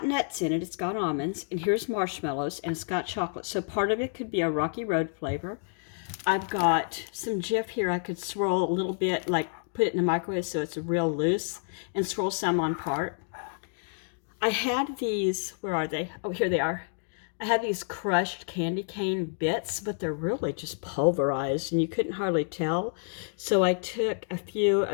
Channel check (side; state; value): right; silent; digital silence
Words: nuts in it, it's got almonds, and here's marshmallows, and it's got chocolate. So part of it could be a Rocky Road flavor. I've got some Jif here. I could swirl a little bit, like put it in the microwave so it's real loose, and swirl some on part. I had these, where are they? Oh, here they are. I had these crushed candy cane bits, but they're really just pulverized, and you couldn't hardly tell. So I took a few